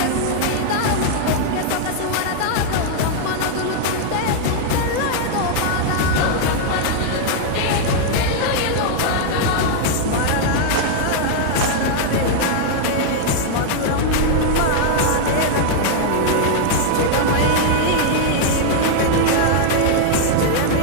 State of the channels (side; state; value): both; different; correlation 0.00